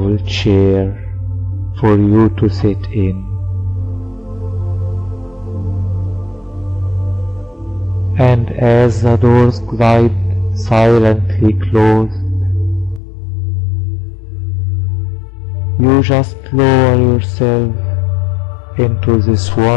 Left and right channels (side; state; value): right; drops out; at 13.0 s